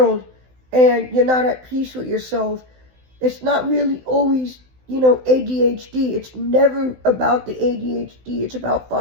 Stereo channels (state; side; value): late; left; 16 ms